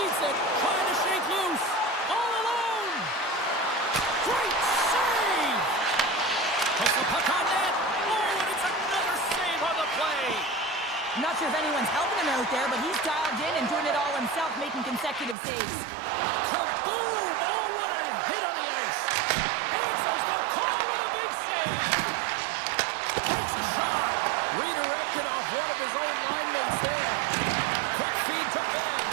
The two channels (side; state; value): left; drops out; at 15.4 s